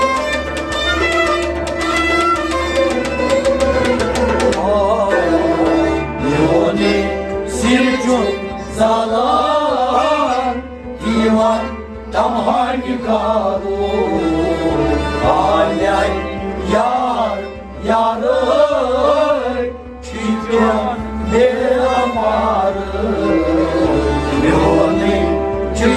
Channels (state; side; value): identical; both; correlation 1.00